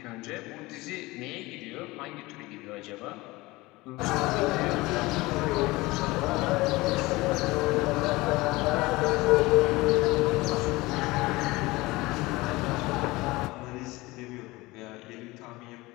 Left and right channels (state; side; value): quieter; right; 21.1 dB